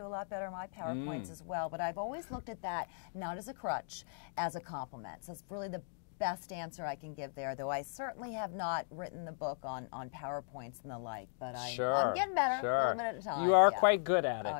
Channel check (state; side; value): silent; right; digital silence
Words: a lot better in my PowerPoints as well, but I've always looked at that not as a crutch, as a compliment. So it's really the best answer I can give there, though I certainly have not written the book on PowerPoints and the like, but I'm getting better a little bit at a time. You are quite good at it.